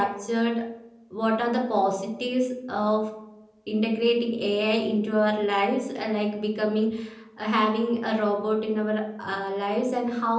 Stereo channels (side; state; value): both; identical; correlation 1.00